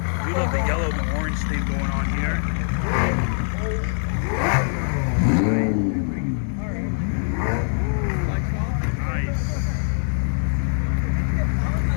We love the yellow and orange thing going on here. Nice.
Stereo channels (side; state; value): right; silent; digital silence